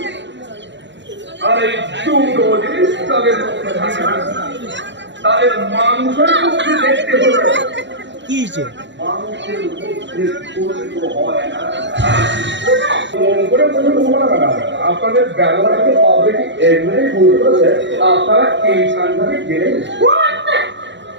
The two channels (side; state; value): left; late; 0.53 ms